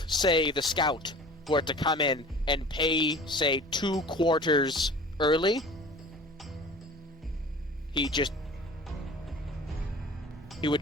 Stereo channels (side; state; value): both; normal; correlation 0.42